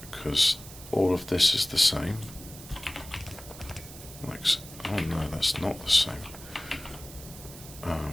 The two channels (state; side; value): noise; right; hiss, 15 dB below the sound